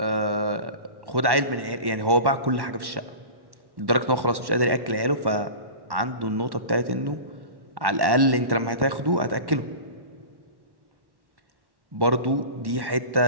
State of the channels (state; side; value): late; left; 1.1 ms